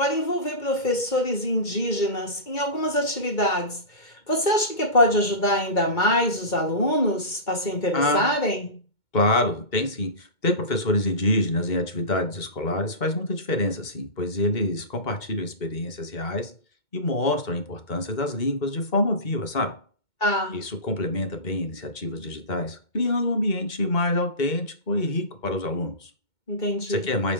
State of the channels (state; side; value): late; right; 2.2 ms